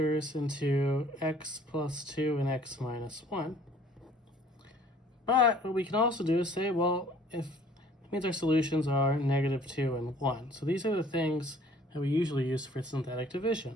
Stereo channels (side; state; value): both; normal; correlation 0.55